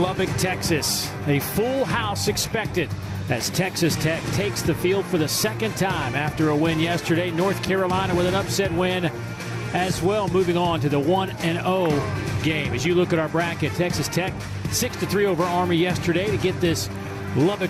Lubbock, Texas. A full house expected as Texas Tech takes the field for the second time after a win yesterday. North Carolina with an upset win as well, moving on to the 1-0 game. As you look at our bracket, Texas Tech 6-3 over Army yesterday to get this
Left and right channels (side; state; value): both; identical; correlation 1.00